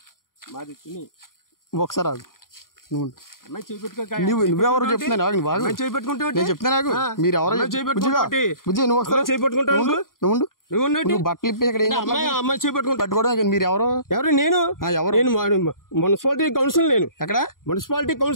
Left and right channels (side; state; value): right; late; 0.91 ms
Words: మాది తుని. ఒకసారి ఆగు. నువ్వెవరు చెప్తున్నాను నేను చెప్తాను నాకు. మీరు ఎవరో బుజ్జి నువ్వు ఒకసారి నువ్వు బట్టలు ఇప్పి ఇక్కడ పట్టుకోవడం. మీరు ఎవరు? నేను ఎవరు? నేను మున్సిపాలిటీ కౌన్సిల్. నేను ఎక్కడ? Municipality